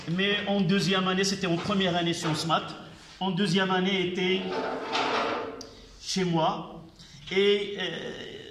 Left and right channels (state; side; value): identical; both; correlation 1.00